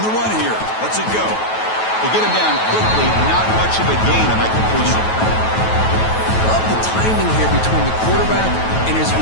the run here. Let's it go. They get him down quickly. Not much of a gain on that completion. Love the timing here between the quarterback and his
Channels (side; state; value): right; late; 9.2 ms